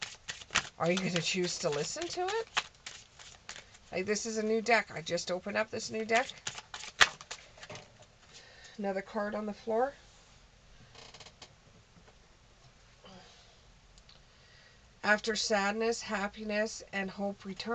Are you going to choose to listen to it? Like, this is a new deck. I just opened up this new deck. Another card on the floor. After sadness, happiness, and hope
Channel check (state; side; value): identical; both; correlation 1.00